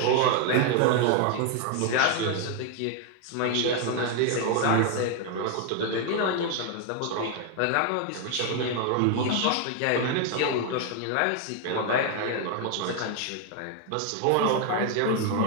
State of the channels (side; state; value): both; different; correlation 0.01